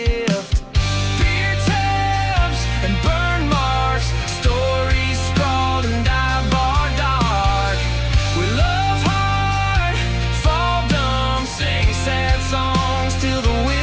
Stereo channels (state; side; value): identical; both; correlation 1.00